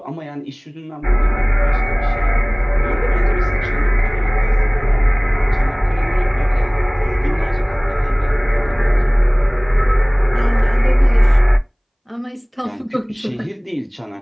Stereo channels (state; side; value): identical; both; correlation 1.00